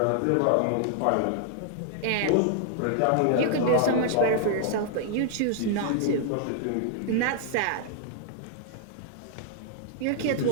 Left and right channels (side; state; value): both; different; correlation 0.00